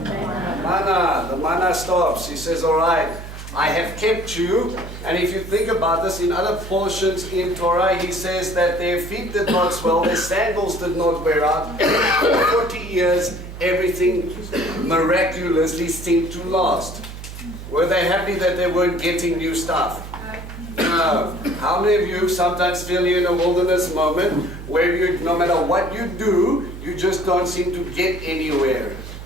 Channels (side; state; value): right; noise; hum, 11 dB below the sound